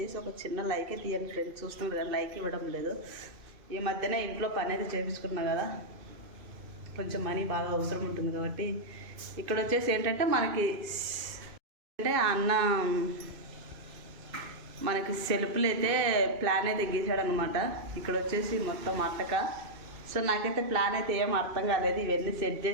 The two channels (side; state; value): left; late; 2.6 ms